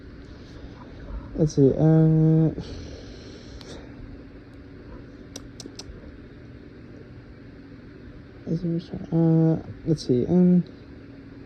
Let's see. Let's see.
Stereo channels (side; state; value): both; identical; correlation 1.00